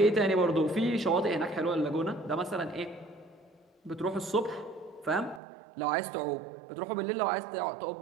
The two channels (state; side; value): drops out; left; at 5.4 s